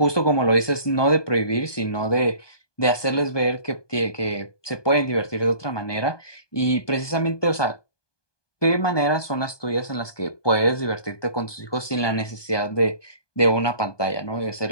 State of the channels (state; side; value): late; right; 1.2 ms